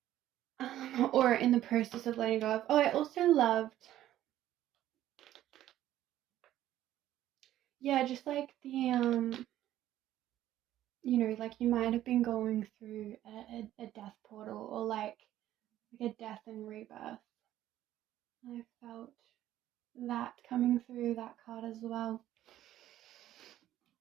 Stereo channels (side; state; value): left; quieter; 13.1 dB